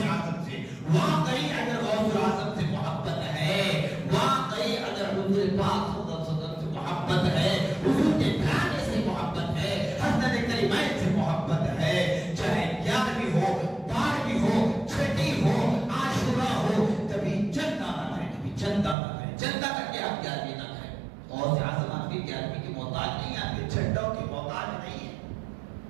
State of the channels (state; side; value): drops out; left; at 18.9 s